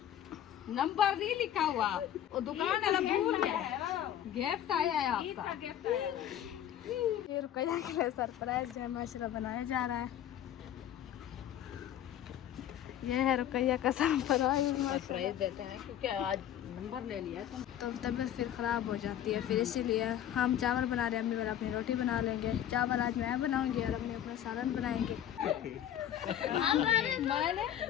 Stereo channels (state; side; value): quieter; right; 10.8 dB